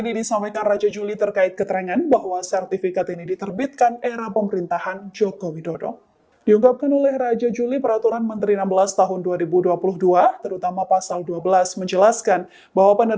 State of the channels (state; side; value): identical; both; correlation 1.00